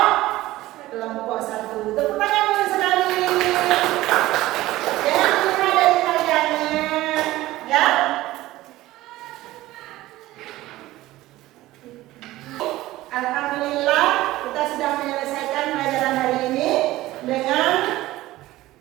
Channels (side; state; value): left; quieter; 16.9 dB